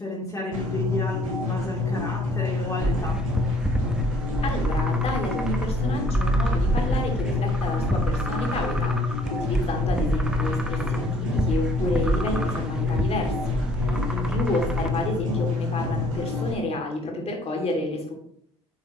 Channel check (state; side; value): normal; both; correlation 0.59